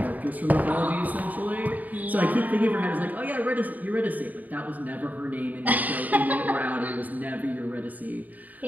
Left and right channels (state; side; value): late; left; 0.078 ms